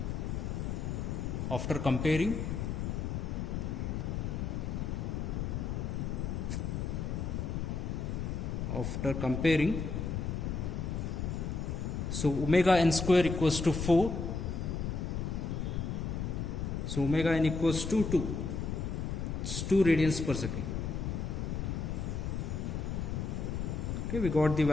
comparing, so omega n square equals to 4, so omega n equals to 2, it's 2 radians per second. Okay, we got the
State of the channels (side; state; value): left; noise; rumble, 2 dB below the sound